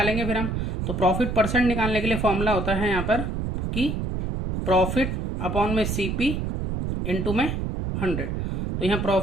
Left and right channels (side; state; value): right; noise; rumble, 2 dB below the sound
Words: फिर हम। तो प्रॉफिट परसेंट निकालने के लिए फॉर्मूला होता है यहाँ पर कि प्रॉफिट अपॉन में CP इंटू में 100। तो यहाँ